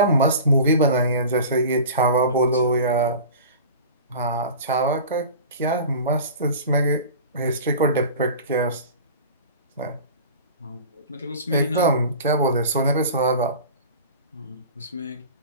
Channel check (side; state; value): both; inverted; correlation -0.37